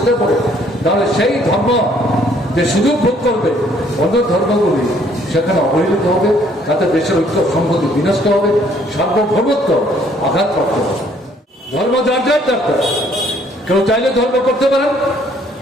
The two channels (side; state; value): both; normal; correlation 0.63